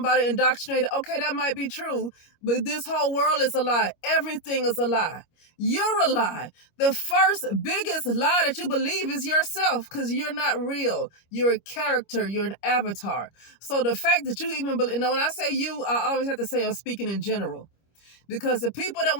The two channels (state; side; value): late; right; 25 ms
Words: indoctrinated, okay, that might be true, but this whole world is a lie. Everything is a lie. You're a lie. The first biggest lie that you believe is yourself because you're not real. You're a character. You're an avatar. So the fact that you even believe, when I say you, I always have to say I'm speaking in general. Because the people that